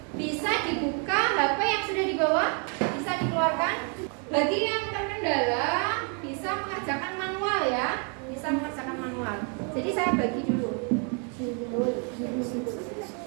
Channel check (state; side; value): quieter; left; 39.2 dB